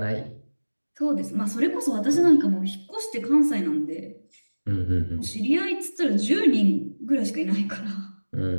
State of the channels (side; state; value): both; inverted; correlation -1.00